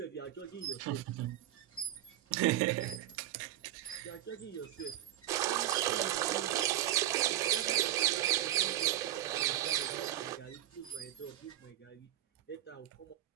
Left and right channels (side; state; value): left; quieter; 13.0 dB